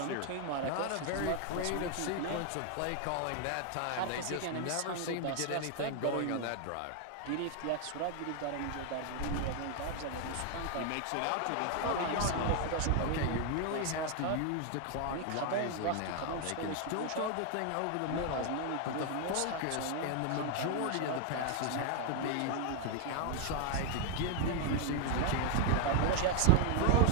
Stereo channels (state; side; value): different; both; correlation 0.00